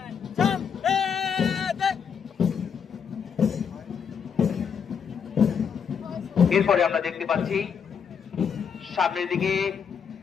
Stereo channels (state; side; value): quieter; right; 7.0 dB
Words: এরপরে আমরা দেখতে পাচ্ছি সামনের দিকে